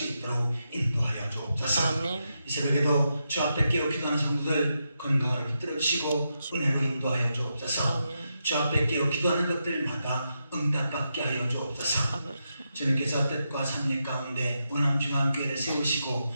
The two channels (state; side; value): inverted; both; correlation -0.85